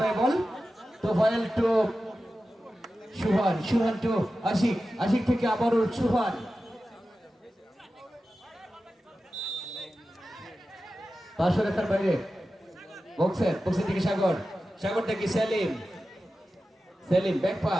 বাই বল, তুফাইল টু সুহান টু আশিক থেকে আবারও সুহান, পাঁচশো রেখার বাইরে, বক্সের থেকে সাগর থেকে সেলিম ব্যাক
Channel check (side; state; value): both; normal; correlation 0.93